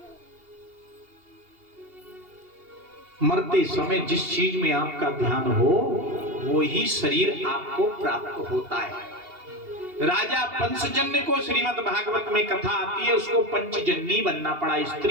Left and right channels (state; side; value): late; left; 2.8 ms